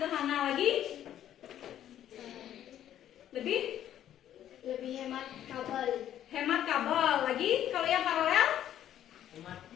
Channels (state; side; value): quieter; right; 11.2 dB